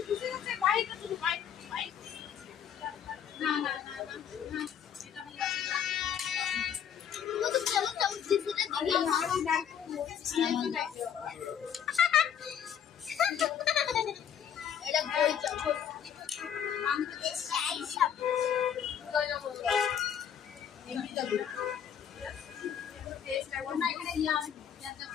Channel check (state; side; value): quieter; right; 8.7 dB